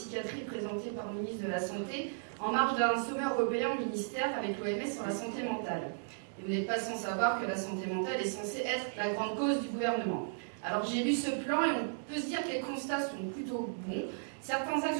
présenté par le ministre de la Santé en marge d'un sommet européen au ministère avec l'OMS sur la santé mentale. Et vous n'êtes pas sans savoir que la santé mentale est censée être la grande cause du gouvernement. Alors j'ai lu ce plan et on peut se dire que les constats sont plutôt bons. Certains axes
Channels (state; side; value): silent; left; digital silence